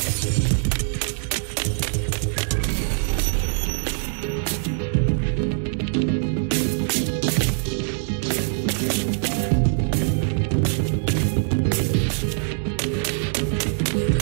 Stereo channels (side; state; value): left; silent; digital silence